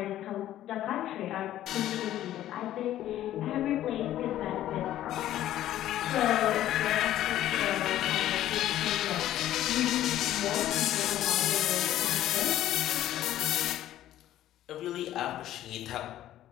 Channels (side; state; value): right; quieter; 13.0 dB